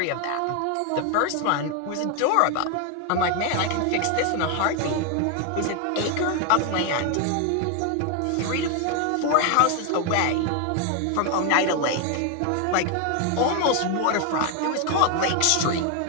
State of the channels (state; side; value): different; both; correlation 0.01